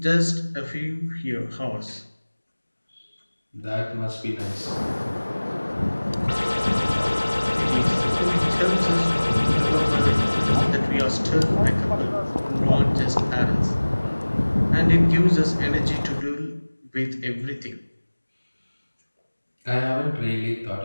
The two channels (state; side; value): inverted; both; correlation -1.00